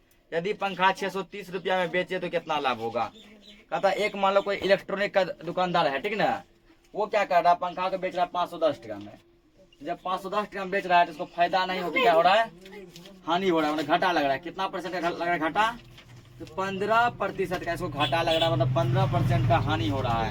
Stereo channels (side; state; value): both; identical; correlation 1.00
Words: यदि पंखा 630 रुपया में बेचे तो कितना लाभ होगा। कहता एक मान लो कोई इलेक्ट्रॉनिक का दुकानदार है, ठीक ना, वो क्या कर रहा है, पंखा को बेच रहा है 510 टका में। जब 510 टका में बेच रहा है तो उसको फायदा नहीं होता, क्या हो रहा है, हानि हो रहा है, मतलब घाटा लग रहा है। कितना परसेंट का लग रहा है घाटा, तो 15% का इसको घाटा लग रहा है, मतलब 15% का हानि हो रहा